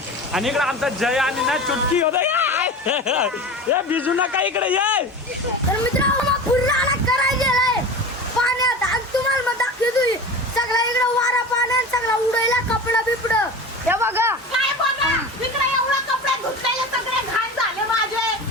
आणि इकडे आमचा जय आणि ना चुटकी होता भिजू नका इकडे ये. तर मित्रांनो फुलला करायचे पाण्यात आणि तुम्हाला मग दाखवतो सगळा इकडे वारा पाण्यात सगळा उडायला कपडा बिपड हे बघा. काय बघा इकडे एवढा कपडे धुतलेले सगळे घाण झाले माझे.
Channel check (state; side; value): normal; both; correlation 0.32